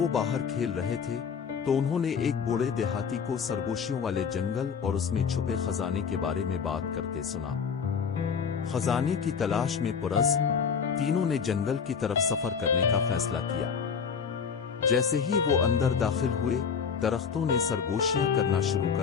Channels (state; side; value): quieter; right; 6.4 dB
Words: وہ باہر کھیل رہے تھے تو انہوں نے ایک بوڑھے دیہاتی کو سرگوشیوں والے جنگل اور اس میں چھپے خزانے کے بارے میں بات کرتے سنا۔ خزانے کی تلاش میں پرعزم تینوں نے جنگل کی طرف سفر کرنے کا فیصلہ کیا۔ جیسے ہی وہ اندر داخل ہوئے، درختوں نے سرگوشیاں کرنا شروع